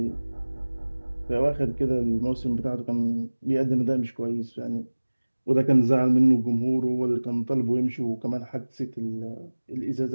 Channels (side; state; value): both; inverted; correlation -1.00